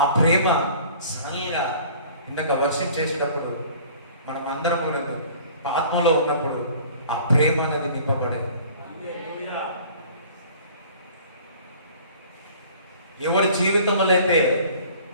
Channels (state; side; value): inverted; both; correlation -0.49